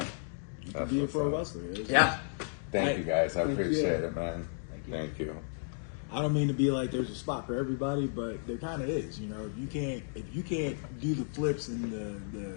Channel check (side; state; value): right; silent; digital silence